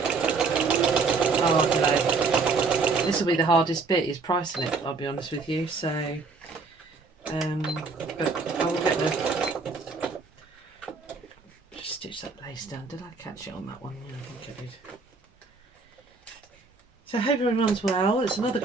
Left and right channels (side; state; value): left; quieter; 4.3 dB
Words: don't know, this will be the hardest bit, is pricing it, I'll be honest with you. So but I will get the, just stitch that lace down. Did I catch it on that one? Yeah, I think I did. So I hope everyone's well. It's another